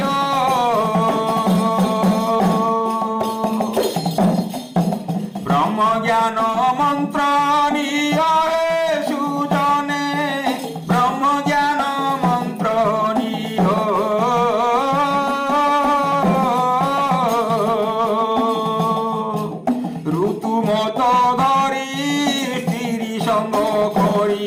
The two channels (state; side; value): identical; both; correlation 1.00